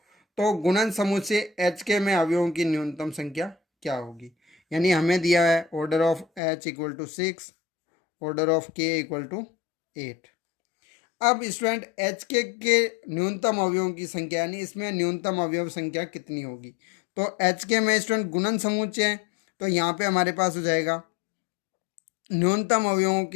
तो गुणन समूह से एच के में अवयवों की न्यूनतम संख्या क्या होगी। यानी हमें दिया है order of h equal to 6 order of k equal to 8। अब स्टूडेंट एच के न्यूनतम अवयवों की संख्या यानी इसमें न्यूनतम अवयव संख्या कितनी होगी। तो एच के में स्टूडेंट गुणन समुच्चय है तो यहाँ पे हमारे पास हो जाएगा न्यूनतम अवयवों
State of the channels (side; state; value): right; drops out; at 6.4 s